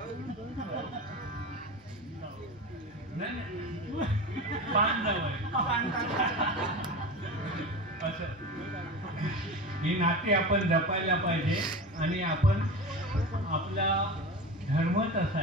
असं. ही नाती आपण जपायला पाहिजे. आणि आपण, आपला धर्मच असा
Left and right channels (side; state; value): both; normal; correlation 0.28